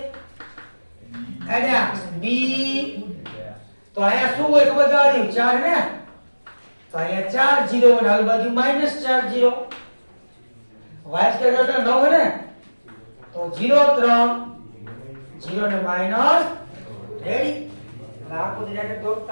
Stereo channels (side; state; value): both; inverted; correlation -1.00